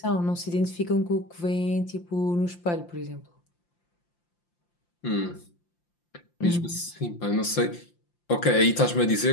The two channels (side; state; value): right; late; 5.8 ms